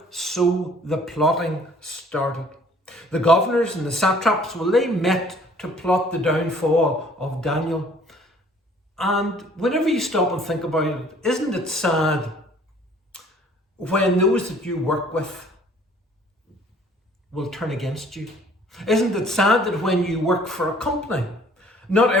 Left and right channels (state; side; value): normal; both; correlation 0.56